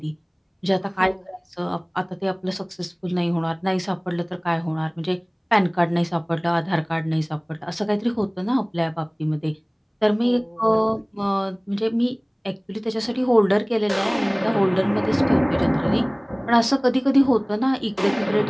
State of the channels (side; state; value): both; identical; correlation 1.00